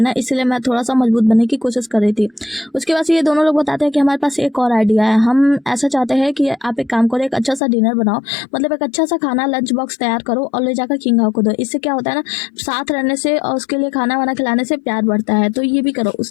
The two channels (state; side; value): drops out; right; at 7.6 s